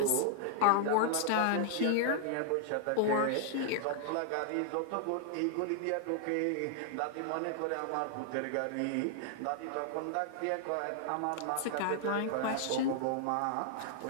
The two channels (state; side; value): different; both; correlation 0.00